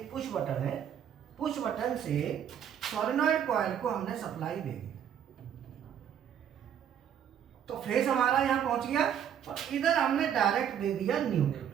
पुश बटन है। पुश बटन से सोलेनॉइड कॉइल को हमने सप्लाई दे दी तो फेस हमारा यहाँ पहुंच गया और इधर हमने डायरेक्ट दे दिया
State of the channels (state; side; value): quieter; left; 9.1 dB